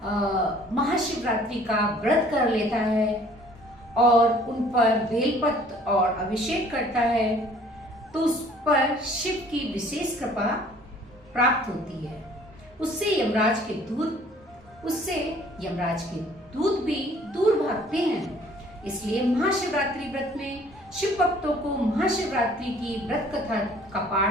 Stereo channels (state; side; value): normal; both; correlation 0.55